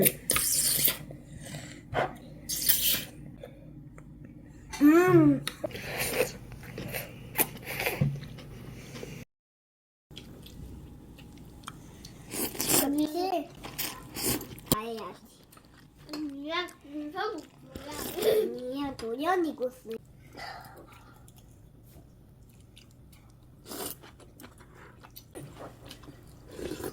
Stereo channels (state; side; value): identical; both; correlation 1.00